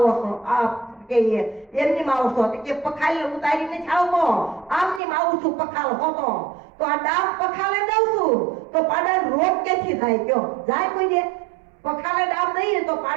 છો? આ કે એમની માં આવો છો? કે પખાલ ઉતારીને આવતો, આમની માં આવું છું પખાલ હોતો. તો આ ડામ પખાલે દઉં છું તો પાડાનો રોગ ક્યાંથી થાય? કયો જાય કોઈ દે? પખાલે ડામ દઈએ તો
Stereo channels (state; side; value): drops out; left; at 5.0 s